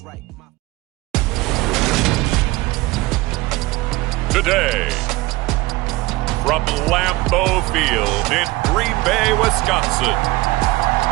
Today, from Lambeau Field in Green Bay, Wisconsin,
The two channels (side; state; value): left; quieter; 20.1 dB